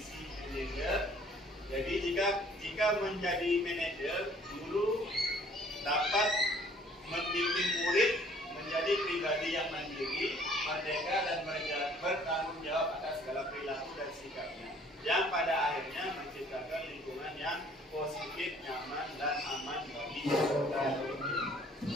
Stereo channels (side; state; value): both; normal; correlation 0.57